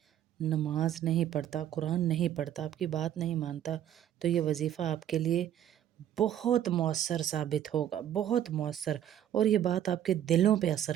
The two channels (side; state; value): left; quieter; 10.8 dB